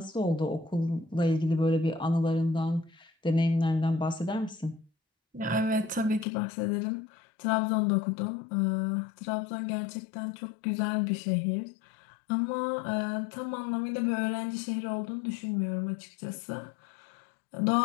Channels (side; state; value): right; drops out; at 6.2 s